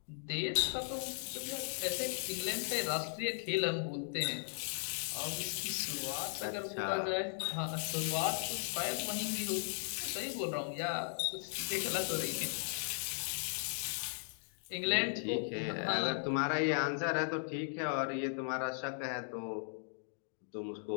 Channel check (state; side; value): silent; right; digital silence